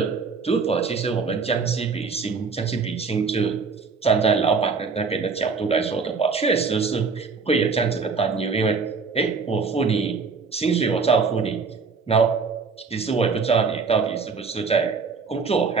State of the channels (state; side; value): quieter; left; 5.0 dB